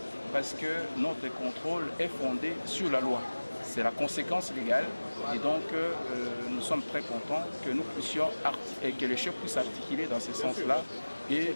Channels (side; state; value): both; inverted; correlation -1.00